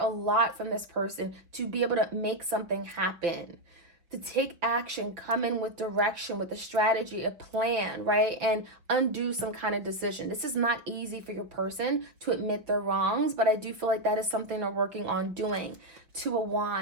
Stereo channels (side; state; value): left; late; 5.2 ms